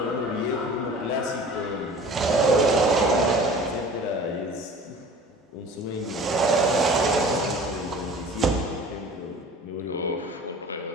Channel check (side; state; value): both; normal; correlation 0.43